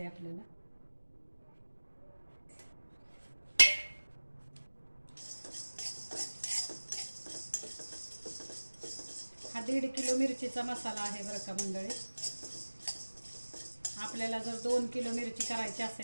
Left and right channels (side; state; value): both; inverted; correlation -1.00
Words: आहे आपल्याला. हा 1.5 किलो मिरचीचा मसाला आहे बरं का मंडळी. आपल्याला जर 2 किलो मिरची करायची